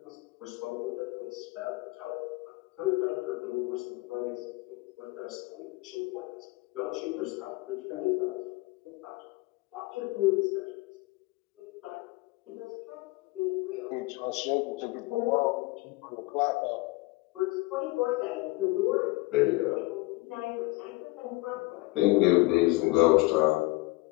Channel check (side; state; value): right; quieter; 22.6 dB